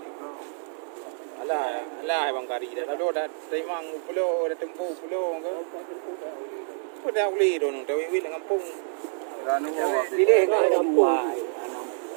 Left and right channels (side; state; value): left; silent; digital silence